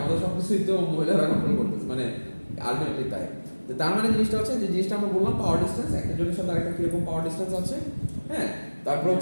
সবকিছুই তো মহিলারা কন্ট্রোল করতেছে মানে আলটিমেটলি তাই। তো তার মানে জিনিসটা হচ্ছে যে জিনিসটা আমরা বললাম পাওয়ার ডিসটেন্স একটা জনের সাথে আরেকটা কিরকম পাওয়ার ডিসটেন্স আছে হ্যাঁ। তারপর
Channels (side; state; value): both; inverted; correlation -1.00